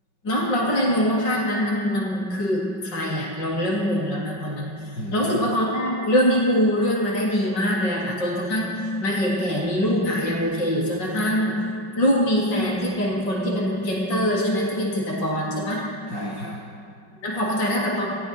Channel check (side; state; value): right; late; 5.3 ms